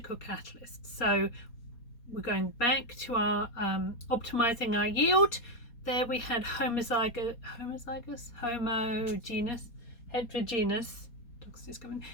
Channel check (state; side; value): late; right; 4.2 ms